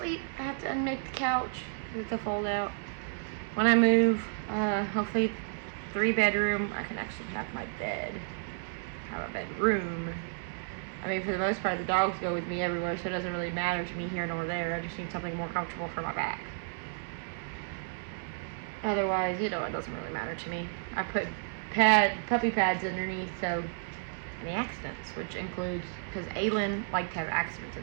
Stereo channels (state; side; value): silent; left; digital silence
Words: I have to unmake the couch. It's a fold out. When I move, hopefully 3-bedroom, I can actually have my bed. Have a bedroom. I mean, for the most part, the dogs go with me everywhere, so it doesn't really matter to me here nor there. I just need something more comfortable for my back. Otherwise, you know, it doesn't really matter to me. I put puppy pads underneath, so any accidents, which includes, because Aylin liked to have accidents